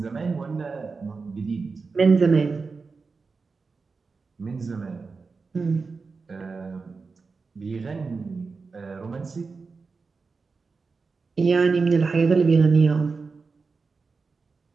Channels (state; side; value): quieter; left; 4.5 dB